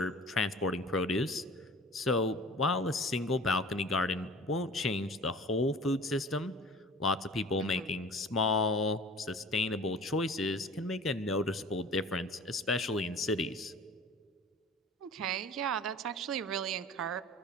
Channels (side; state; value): both; normal; correlation 0.43